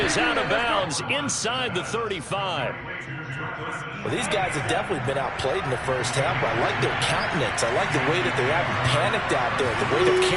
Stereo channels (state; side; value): identical; both; correlation 1.00